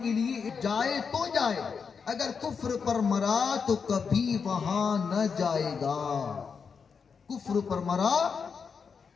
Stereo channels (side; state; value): right; quieter; 5.9 dB